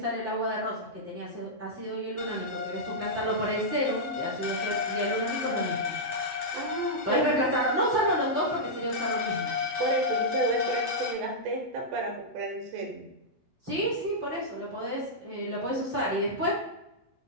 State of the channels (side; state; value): left; late; 7.9 ms